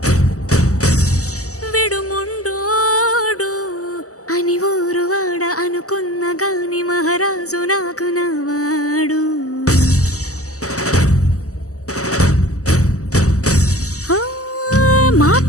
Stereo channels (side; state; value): right; late; 0.66 ms